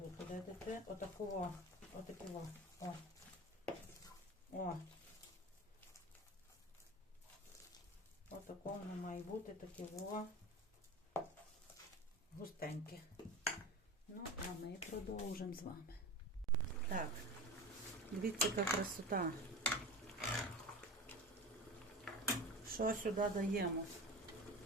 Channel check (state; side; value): normal; both; correlation 0.30